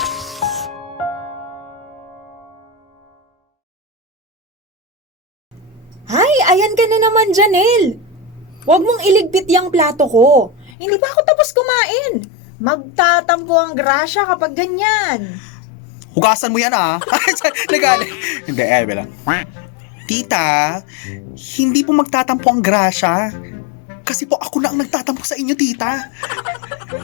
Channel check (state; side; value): drops out; right; at 10.7 s